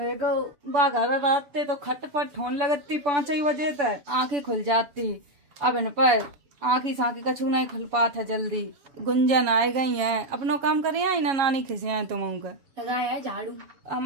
बाघर रात तो खटपट होने लगती 5 बजे तक, आंखें खुल जाती। अब इन पर आंखी साँखी कछू नहीं खुल पाता जल्दी। गुंजन आए गई है, अपनो काम करे आई ना नानी खिसिया तुम लगाया झाड़ू।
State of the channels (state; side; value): late; left; 7.0 ms